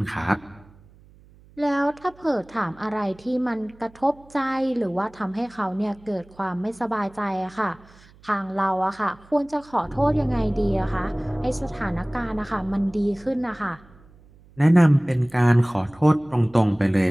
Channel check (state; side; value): noise; right; hum, 26 dB below the sound